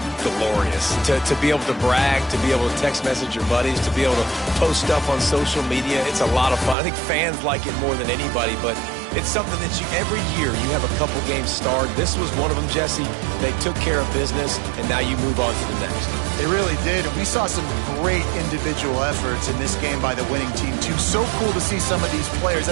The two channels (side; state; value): left; drops out; at 6.8 s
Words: glorious to be able to brag, to be able to text message your buddies, to be able to post stuff on social media. It's a lot of fun. I think fans like it more than anybody, but it's something that every year you have a couple games starred. This was one of them, Jesse. They took care of business, and now you move on to the next. They really did, and we saw some great individual efforts in this game by the winning team, too. So cool to see some of these players that